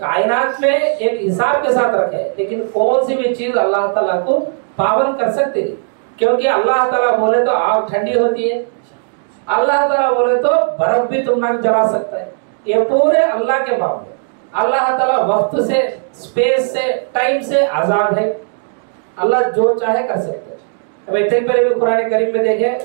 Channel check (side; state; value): left; silent; digital silence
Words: میں ایک حساب کے ساتھ رکھے لیکن کون سی بھی چیز اللہ تعالیٰ کو پابند کر سکتے نہیں کیونکہ اللہ تعالیٰ بولے تو آگ ٹھنڈی ہوتی ہے، اللہ تعالیٰ بولے تو برف بھی تم نہ جلا سکتا ہے. یہ پورے اللہ کے معاملے. اللہ تعالیٰ وقت سے اسپیس سے ٹائم سے آزاد ہے. اللہ جو چاہے کر سکتے. اب اتنے پہلے بھی قرآن کریم میں دیکھیں